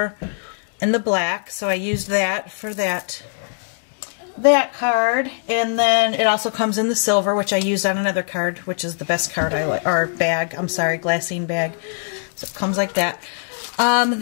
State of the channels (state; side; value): silent; right; 65 dB below the other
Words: and the black. So I used that for that card. And then it also comes in the silver, which I used on another card, which is the best card I like, or bag, I'm sorry, glassine bag. So it comes like that.